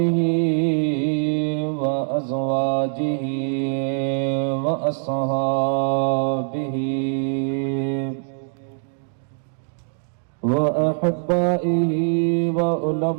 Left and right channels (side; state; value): left; silent; digital silence